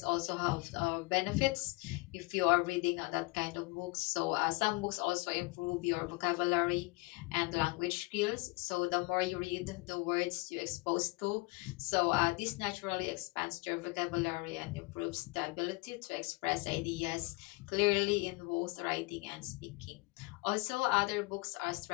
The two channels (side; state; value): right; quieter; 24.5 dB